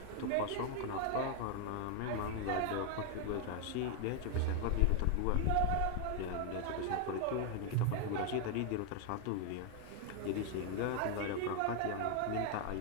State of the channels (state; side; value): different; both; correlation 0.00